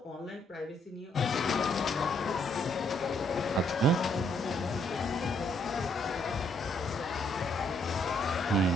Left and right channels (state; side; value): normal; both; correlation 0.71